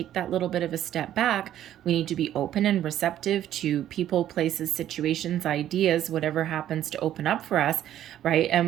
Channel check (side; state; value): left; quieter; 11.8 dB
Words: that little bit of a step back. We need to be open and receptive to people, places, situations, ideas, whatever happens to open up for us, right?